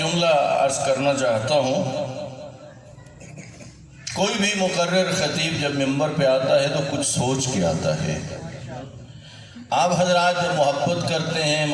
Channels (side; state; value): both; identical; correlation 1.00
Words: عرض کرنا چاہتا ہوں، کوئی بھی مقرر خطیب جب منبر پہ آتا ہے تو کچھ سوچ کے آتا ہے۔ آپ حضرات جب محبت کرتے ہیں،